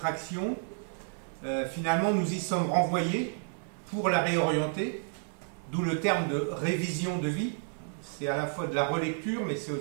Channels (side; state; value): left; silent; 57 dB below the other